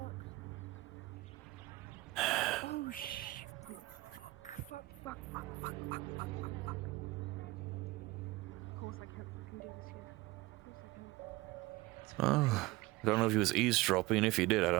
Oh, shit. Fuck. Of course I can't fucking do this here. Of course I can't. Oh, I don't know if he was eavesdropping. If he did, I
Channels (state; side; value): quieter; left; 20.5 dB